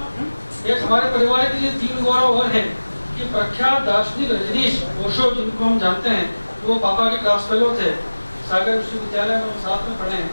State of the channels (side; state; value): both; inverted; correlation -1.00